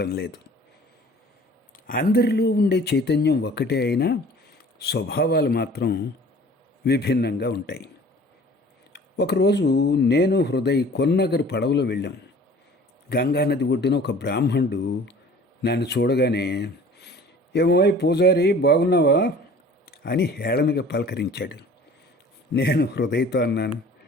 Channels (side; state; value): both; normal; correlation 0.47